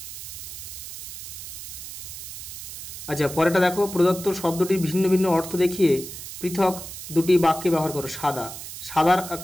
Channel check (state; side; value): noise; right; hiss, 10 dB below the sound